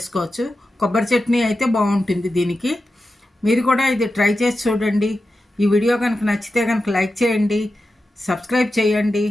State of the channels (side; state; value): both; normal; correlation 0.91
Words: కొబ్బరి చట్నీ అయితే బాగుంటుంది దీనికి. మీరు కూడా ఇది ట్రై చేసి చూడండి. ఈ వీడియో కనుక నచ్చితే కనుక లైక్ చేయండి, సబ్స్క్రైబ్ చేయండి.